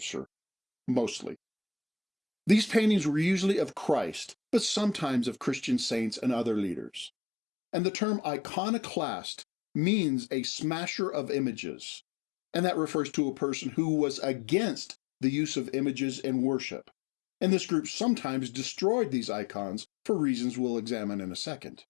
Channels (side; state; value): right; drops out; at 7.1 s